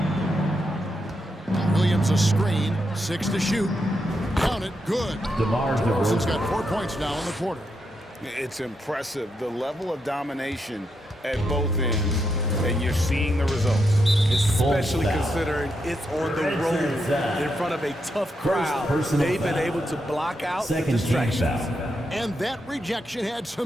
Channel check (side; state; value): both; normal; correlation 0.82